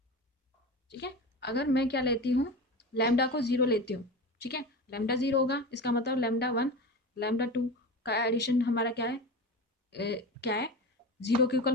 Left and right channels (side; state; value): both; normal; correlation 0.29